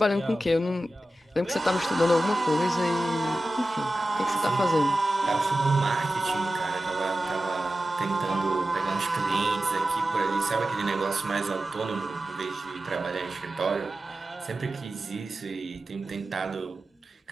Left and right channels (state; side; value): normal; both; correlation 0.94